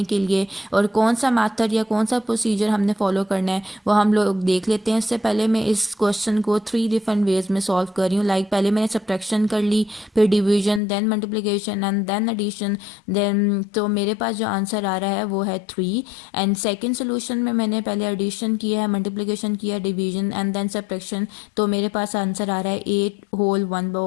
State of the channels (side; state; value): right; drops out; at 10.8 s